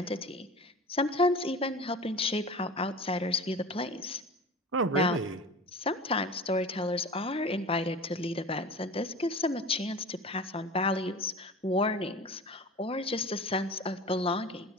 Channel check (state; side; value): normal; both; correlation 0.35